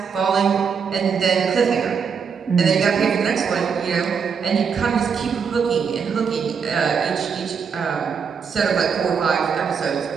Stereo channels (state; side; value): quieter; left; 6.3 dB